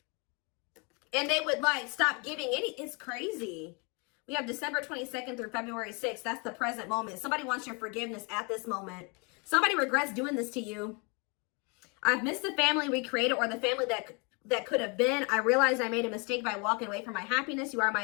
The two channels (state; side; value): quieter; right; 32.2 dB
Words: And they would, like, stop giving any. It's crazy. We have December 22nd through February 6th. That's the present moment. Somebody wants your forgiveness at this moment. Somebody regrets doing this to you. I've missed the family we created, or the family that could have been. I realized I made a mistake by walking away from my happiness. You are